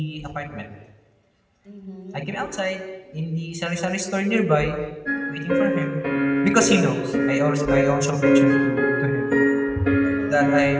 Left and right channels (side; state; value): both; identical; correlation 1.00